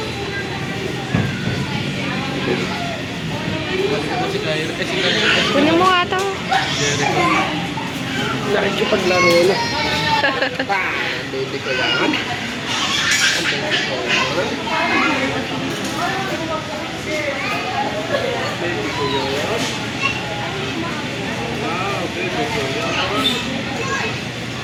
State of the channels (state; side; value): identical; both; correlation 1.00